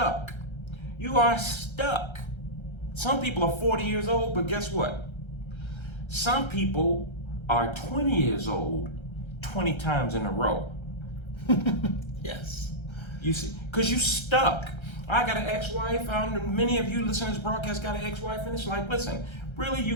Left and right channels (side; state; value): right; late; 1.3 ms